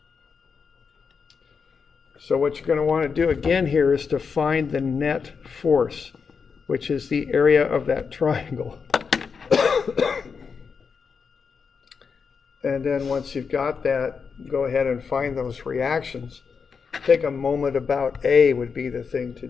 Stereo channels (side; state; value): right; quieter; 5.7 dB